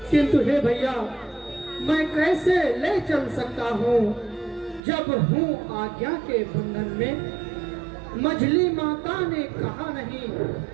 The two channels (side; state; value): left; drops out; at 4.8 s